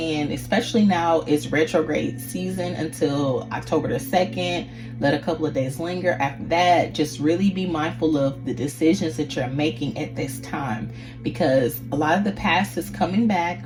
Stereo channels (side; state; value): both; identical; correlation 1.00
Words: Especially now, it's retrograde season until October the 2nd. Let a couple of days linger. After that, just really be mindful of the decisions that you're making at this time, because a lot of the past is coming back.